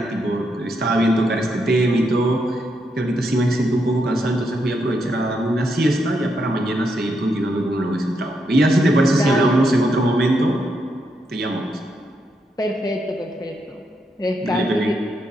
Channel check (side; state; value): both; normal; correlation 0.80